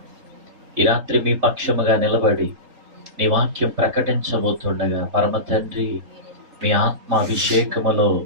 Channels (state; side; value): late; left; 3.8 ms